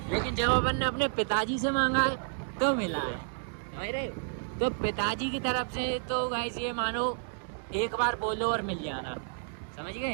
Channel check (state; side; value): silent; left; digital silence